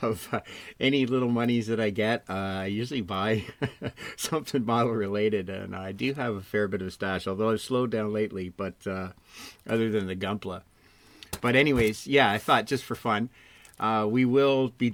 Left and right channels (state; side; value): identical; both; correlation 1.00